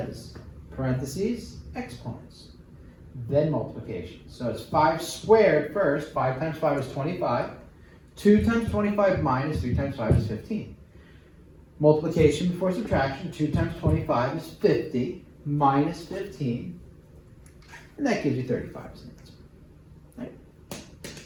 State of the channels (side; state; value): both; identical; correlation 1.00